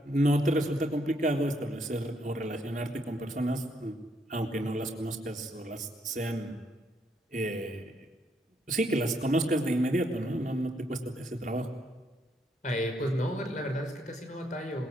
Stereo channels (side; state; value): both; normal; correlation 0.73